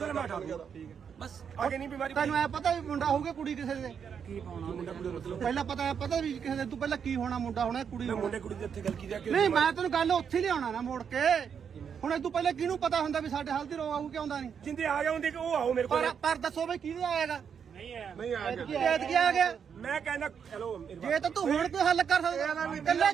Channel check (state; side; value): quieter; left; 7.2 dB